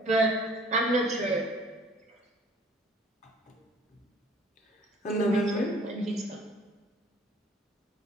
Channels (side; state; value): both; normal; correlation 0.53